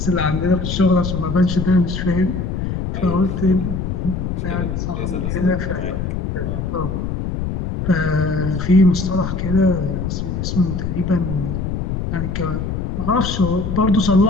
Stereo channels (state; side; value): noise; left; rumble, 3 dB below the sound